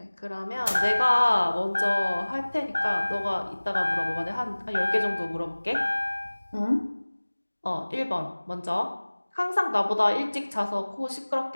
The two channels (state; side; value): inverted; both; correlation -1.00